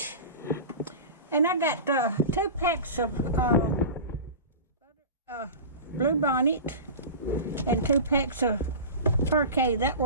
and I got 2 packs of Blue Bonnet and 2 packs of Parquet. That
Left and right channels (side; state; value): both; inverted; correlation -0.30